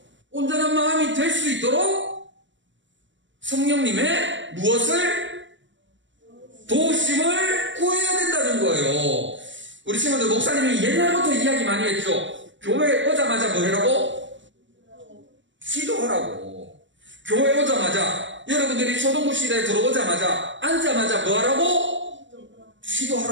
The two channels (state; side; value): late; left; 0.54 ms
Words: 있도록 성령님의 무엇을? 도우심을 구해야 된다는 거예요. 우리 친구들 목사님이 옛날부터 이야기 많이 했죠. 교회 오자마자 뭐 하라고? 기도하라고. 교회 오자마자 여러분들이 초등부실에 들어오자마자 앉자마자 뭐 하라고?